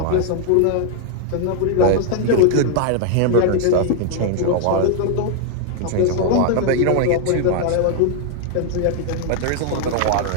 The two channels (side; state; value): both; different; correlation 0.00